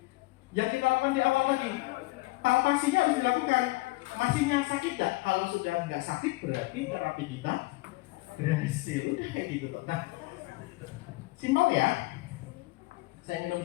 Yang kita lakukan di awal lagi. Palpasinya harus dilakukan. Masih yang sakit tak? Kalau sudah nggak sakit berarti terapi kita berhasil. Udah kayak gitu toh. Nah, simpel ya. Saya minum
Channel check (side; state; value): right; quieter; 22.0 dB